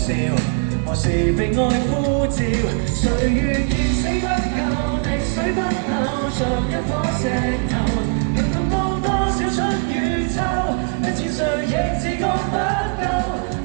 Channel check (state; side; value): quieter; left; 36.5 dB